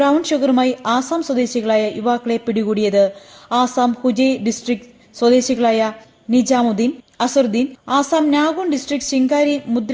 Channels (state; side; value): identical; both; correlation 1.00